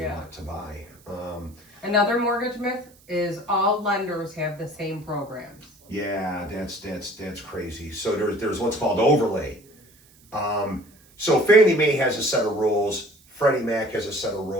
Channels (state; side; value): noise; right; hiss, 28 dB below the sound